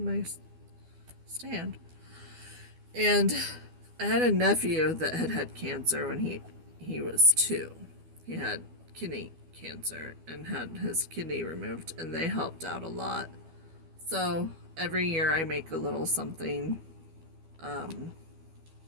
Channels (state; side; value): late; left; 12 ms